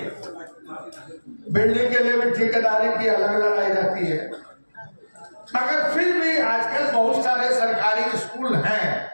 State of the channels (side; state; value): both; inverted; correlation -1.00